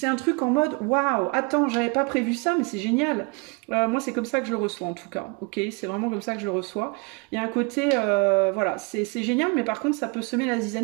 un truc en mode waouh, attends, j'avais pas prévu ça, mais c'est génial. Moi c'est comme ça que je le reçois en tout cas, ok? C'est vraiment comme ça que je le reçois. Il y a un côté, voilà, c'est génial, mais par contre ça peut semer la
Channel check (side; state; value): left; quieter; 31.1 dB